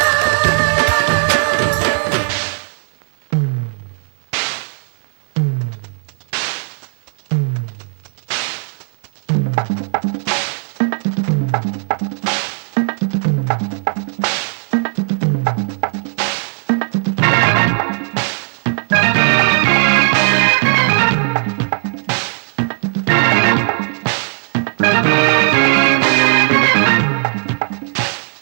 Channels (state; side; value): silent; left; 55 dB below the other